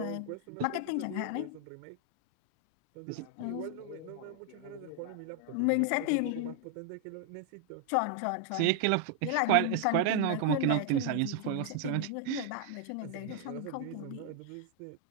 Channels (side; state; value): both; different; correlation 0.00